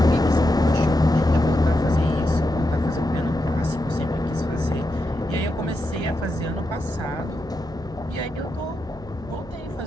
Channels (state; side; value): noise; right; hum, 18 dB below the sound